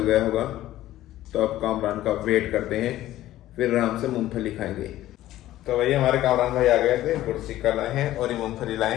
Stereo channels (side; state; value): right; quieter; 14.5 dB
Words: गया होगा, तो अब कामरान का वेट करते हैं, फिर आराम से मूंगफली खाएंगे। तो वही हमारे कामरान भाई आ गए थे, गुड़ चिक्का लाए हैं और ये मूंगफली लाए